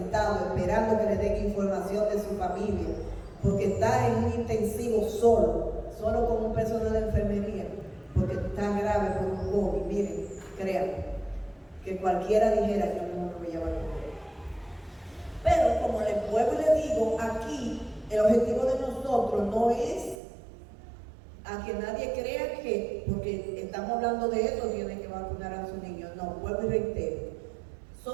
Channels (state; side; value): drops out; left; at 20.2 s